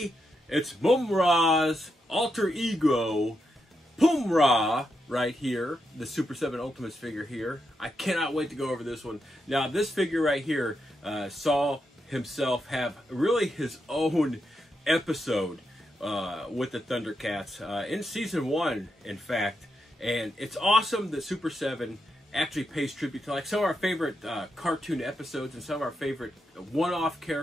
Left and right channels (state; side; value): normal; both; correlation 0.84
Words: it's Mumm-Ra's alter ego, Pumm-Ra, right here. The Super 7 Ultimates figure here. I cannot wait to go over this one. Now, this figure right here saw himself have really his own episode with the ThunderCats in Season 1, in fact. And it's awesome that Super 7 actually pays tribute to like some of our favorite cartoon episodes and some of our favorite one-off